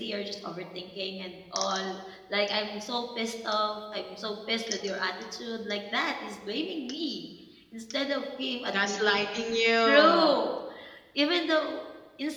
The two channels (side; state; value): both; identical; correlation 1.00